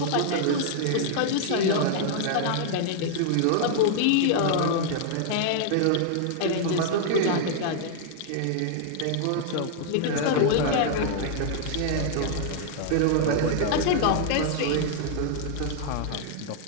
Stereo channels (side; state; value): both; different; correlation -0.01